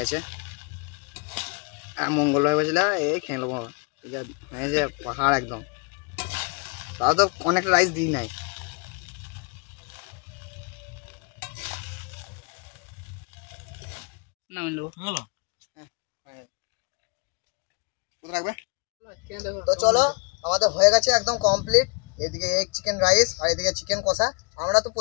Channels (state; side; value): quieter; right; 34.1 dB